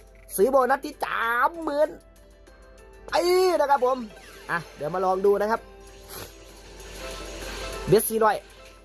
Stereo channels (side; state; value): both; identical; correlation 1.00